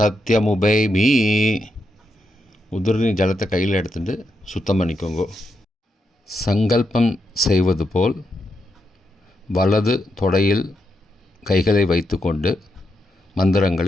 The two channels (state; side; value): normal; both; correlation 0.84